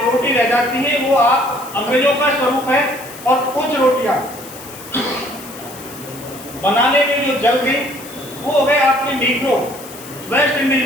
रोटी रह जाती है वो आप अंग्रेजों का स्वरूप है। और कुछ रोटियां बनाने में जो जल गई वो हो गए आपके नीग्रो, वेस्ट इंडीज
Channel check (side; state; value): left; noise; hiss, 16 dB below the sound